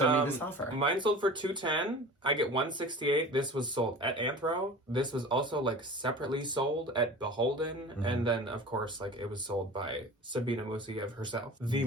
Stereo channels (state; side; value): normal; both; correlation 0.38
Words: me this offer. Mine sold for $210. I get $168. This was sold at Anthro. This was also like separately sold at Beholden, and then of course like it was sold by Sabina Musayev herself, the